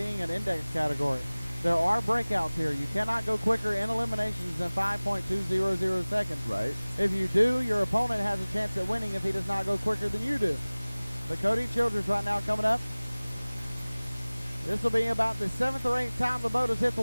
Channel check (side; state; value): both; inverted; correlation -1.00